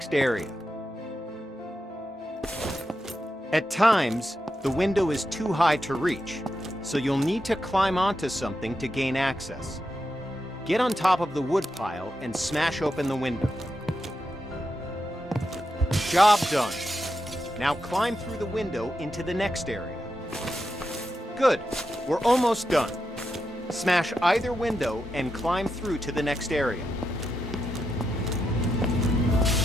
area. At times, the window is too high to reach, so you'll need to climb onto something to gain access. Get on top of the wood pile and smash open the window. Job done. Now climb through the window into the next area. Good, we're almost done. Smash either window and climb through to the next area.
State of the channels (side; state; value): both; normal; correlation 0.86